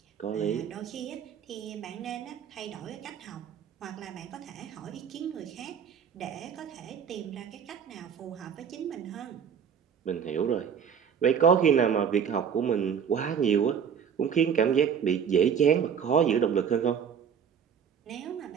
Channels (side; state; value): left; quieter; 7.5 dB